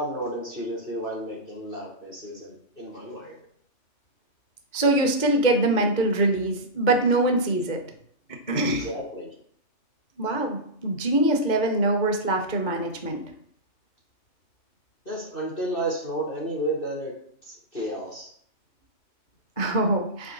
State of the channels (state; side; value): late; right; 2.2 ms